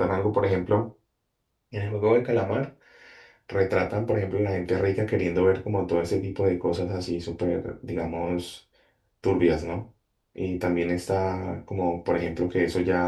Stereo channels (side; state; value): both; identical; correlation 1.00